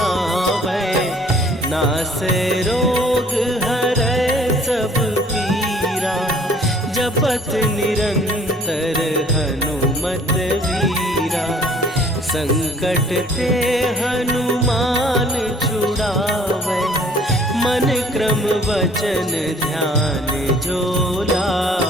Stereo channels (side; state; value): both; normal; correlation 0.56